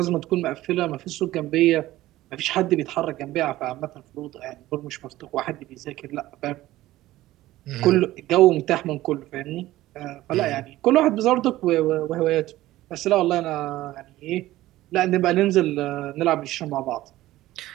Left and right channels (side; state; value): left; quieter; 16.1 dB